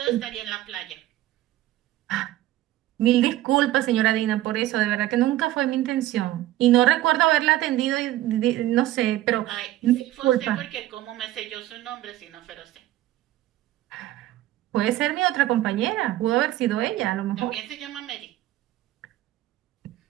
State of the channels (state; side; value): quieter; left; 15.0 dB